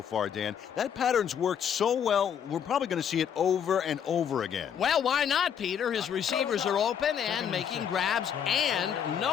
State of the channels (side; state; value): right; quieter; 8.3 dB